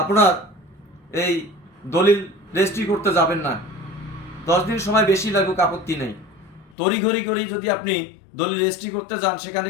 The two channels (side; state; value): right; drops out; at 6.8 s